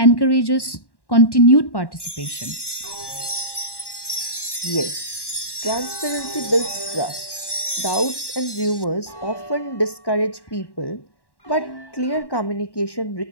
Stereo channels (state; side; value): late; right; 1.1 ms